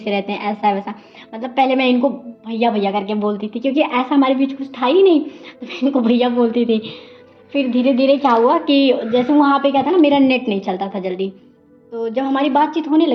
रहते हैं, ऐसा है वैसा। मतलब पहले मैं इनको भैया भैया करके बोलती थी क्योंकि ऐसा हमारे बीच कुछ था ही नहीं, तो मैं इनको भैया बोलती थी। फिर धीरे धीरे क्या हुआ कि जैसे वहाँ पे क्या था ना, मेरा नेट नहीं चलता था जल्दी, तो जब हमारी बातचीत होने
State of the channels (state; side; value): identical; both; correlation 1.00